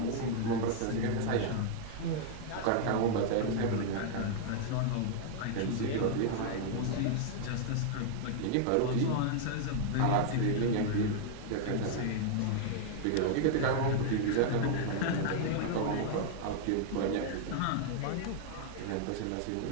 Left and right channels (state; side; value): different; both; correlation -0.01